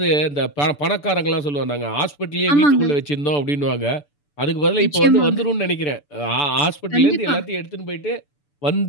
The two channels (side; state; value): right; late; 6.9 ms